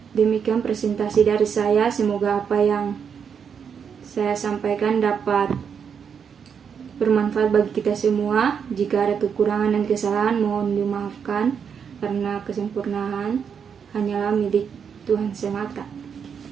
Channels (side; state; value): left; quieter; 7.0 dB